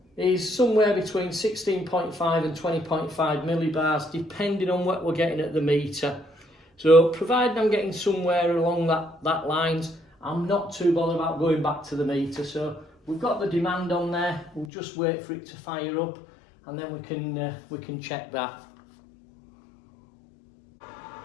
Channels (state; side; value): drops out; right; at 14.7 s